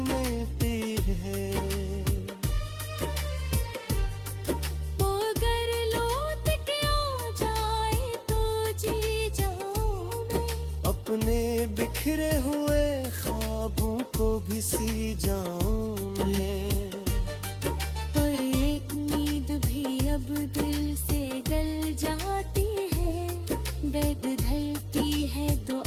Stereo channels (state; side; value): identical; both; correlation 1.00